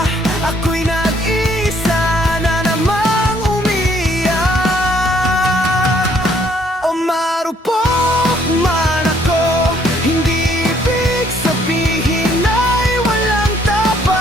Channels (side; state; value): both; normal; correlation 0.66